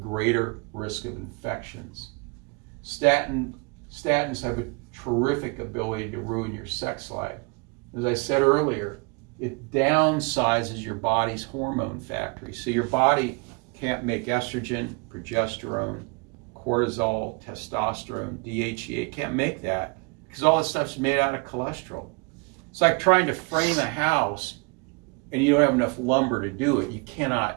risk of infections. Statins have a terrific ability to ruin your sex life. As I said earlier, it downsizes your body's hormone factory. So your body can't make estrogen, progesterone, cortisol, testosterone, DHEA. It can't make that because all this stuff's made out of cholesterol. It's like trying to frame a house and you don't have enough lumber to do it. You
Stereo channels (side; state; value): left; quieter; 31.1 dB